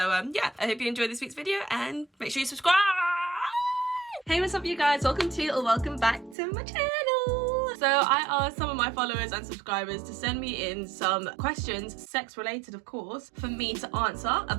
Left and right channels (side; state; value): left; drops out; at 6.4 s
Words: yeah, I hope you enjoyed this week's video and make sure you subscribe. Hey, what's up you guys? Welcome to or welcome back to my channel. So I asked some of my followers and subscribers to send me in some questions, sex related of course, for me to answer